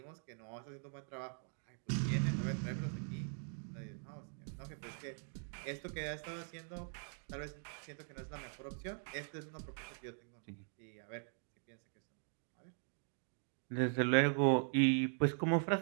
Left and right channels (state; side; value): silent; left; 50 dB below the other